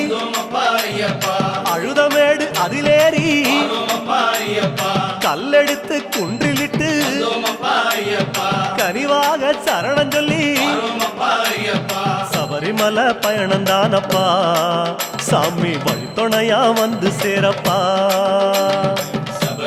வந்தோமப்பா ஐயப்பா அழுதமேடு அதிலேறி வந்தோமப்பா ஐயப்பா கல்லெடுத்து குன்றிலிட்டு வந்தோமப்பா ஐயப்பா கனிவாக சரணம் சொல்லி வந்தோமப்பா ஐயப்பா சபரிமலை பயணம் தானப்பா சாமி வழித்துணையா வந்து சேரப்பா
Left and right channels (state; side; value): identical; both; correlation 1.00